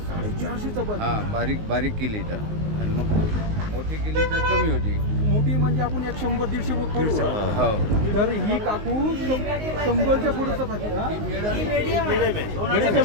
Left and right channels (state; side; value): late; left; 19 ms